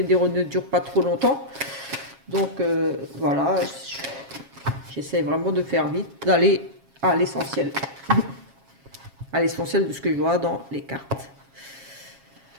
ne dure pas trop longtemps. Donc voilà, j'essaie vraiment de faire vite, d'aller à l'essentiel. À l'essentiel de ce que je vois dans les cartes.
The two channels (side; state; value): left; late; 7.4 ms